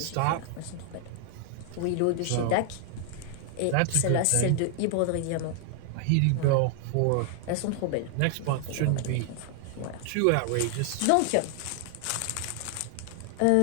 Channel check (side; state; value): both; different; correlation 0.00